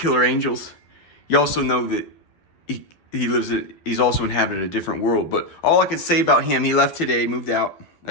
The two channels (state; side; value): late; right; 12 ms